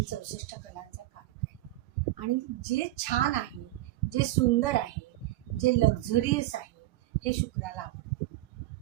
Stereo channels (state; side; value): quieter; left; 16.7 dB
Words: 64 कलांचा कारक आहे. आणि जे छान आहे, जे सुंदर आहे, जे लक्झरियस आहे, हे शुक्राला